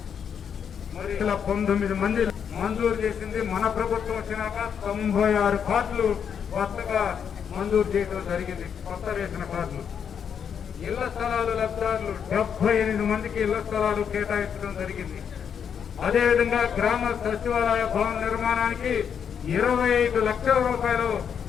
మరి 19 మంది మంజూరు చేసింది. మన ప్రభుత్వం వచ్చినాక 96 కార్డులు కొత్తగా మంజూరు చేయడం జరిగింది. కొత్త రేషన్ కార్డులు. ఇళ్ల స్థలాలు లబ్ధిదారులు 78 మందికి ఇళ్ల స్థలాలు కేటాయించడం జరిగింది. అదేవిధంగా గ్రామ సచివాలయ భవన నిర్మాణానికి 25 లక్షల రూపాయలు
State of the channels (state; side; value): quieter; right; 7.6 dB